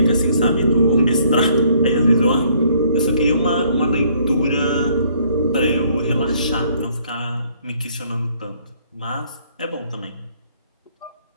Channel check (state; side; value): inverted; both; correlation -0.64